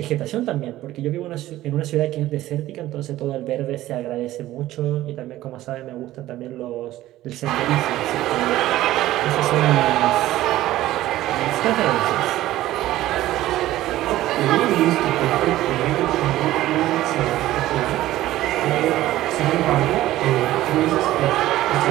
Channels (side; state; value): left; quieter; 15.1 dB